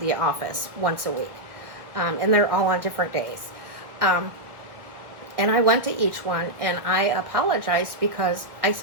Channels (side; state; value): left; late; 1.5 ms